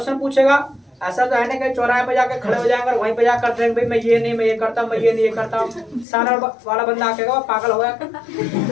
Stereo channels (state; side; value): drops out; right; at 6.1 s